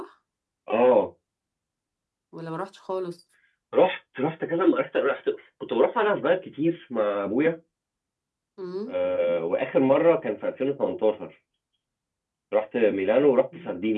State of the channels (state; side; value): identical; both; correlation 1.00